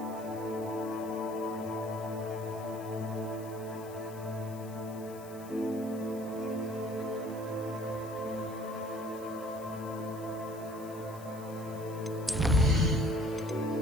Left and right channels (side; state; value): left; noise; hiss, 19 dB below the sound